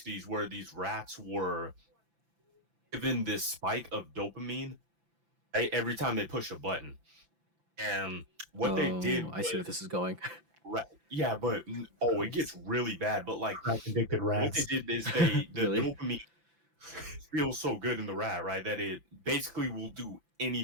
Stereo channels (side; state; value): left; late; 5.9 ms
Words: where these rats were given this spike of dopamine, right, every time they push a button. And what they did I see where was this is going. yeah, but it gets really bad. But like crack addicted what they rats. did is the Really? dopamine feels so good in the rat, right, that it basically will do